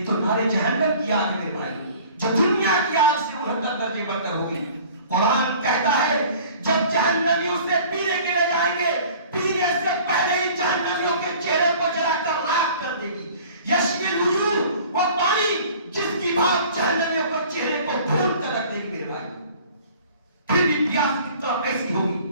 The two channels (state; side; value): inverted; both; correlation -0.48